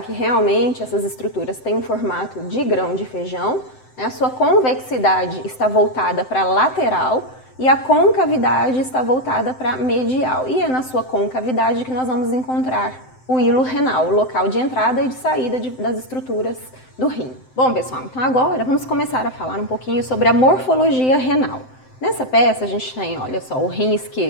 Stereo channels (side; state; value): right; late; 7.8 ms